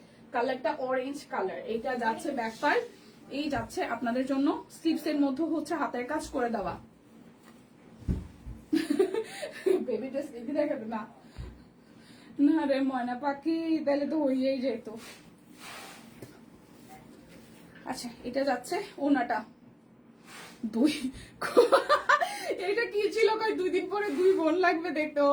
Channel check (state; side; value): identical; both; correlation 1.00